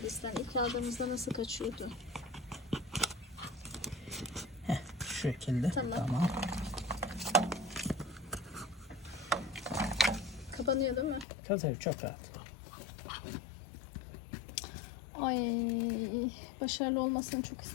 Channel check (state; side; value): drops out; right; at 11.2 s